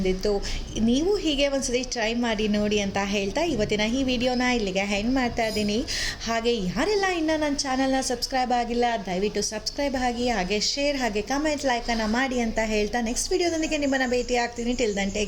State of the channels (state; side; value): identical; both; correlation 1.00